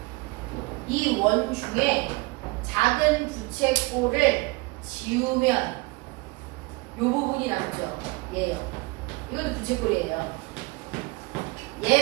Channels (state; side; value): quieter; left; 25.4 dB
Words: 이 원 중에 작은 부채꼴을 지우면 이 부분이 남죠. 얘요. 이건 부채꼴이에요.